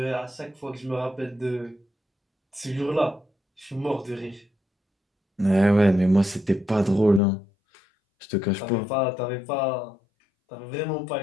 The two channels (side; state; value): right; drops out; at 7.2 s